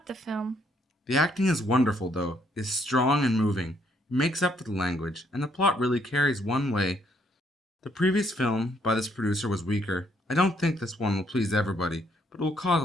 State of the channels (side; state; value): both; normal; correlation 0.70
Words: the film. The acting is wonderful, though. It is strong and moving. It makes up for the language, and the plot really carries one way. The previous film by this producer was weaker. I don't think this one will please everybody, but it will cause